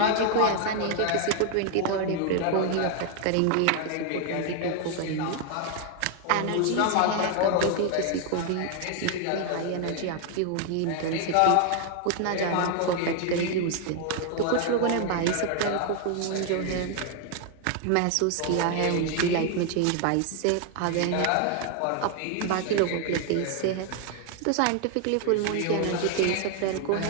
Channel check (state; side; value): different; both; correlation 0.00